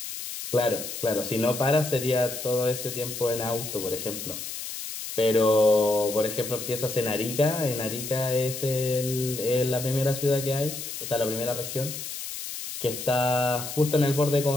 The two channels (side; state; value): left; noise; hiss, 8 dB below the sound